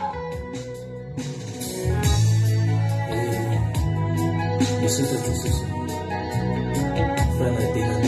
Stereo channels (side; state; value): both; identical; correlation 1.00